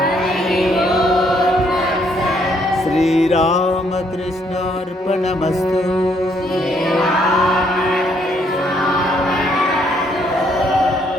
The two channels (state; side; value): normal; both; correlation 0.69